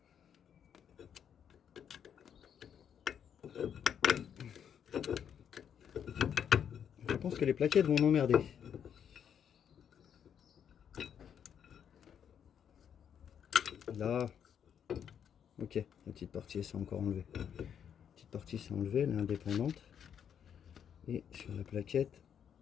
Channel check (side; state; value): right; quieter; 8.4 dB